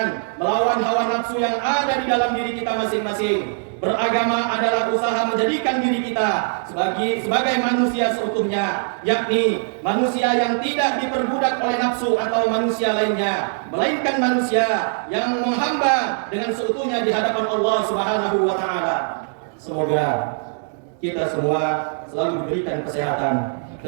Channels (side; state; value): left; silent; digital silence